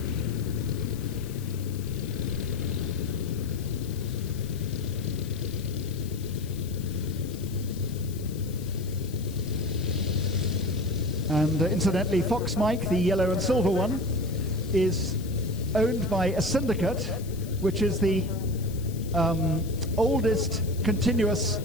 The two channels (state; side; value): noise; left; hiss, 18 dB below the sound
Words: And incidentally, Fox Mike, the yellow and silver one, is owned by a syndicate, which is the oldest continuous